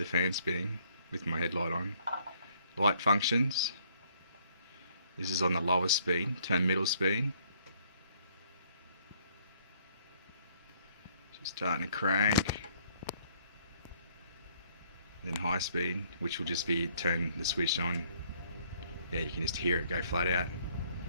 fan spinning with my headlight on. Light functions. This is on the lowest speed, turn middle speed. Just starting to crank. And then high speed, which will just be turn the switch on. Yeah, you can just hear it go flat out.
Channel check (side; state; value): both; inverted; correlation -0.65